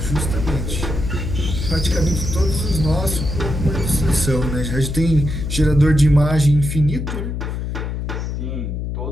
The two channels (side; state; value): left; noise; hum, 4 dB below the sound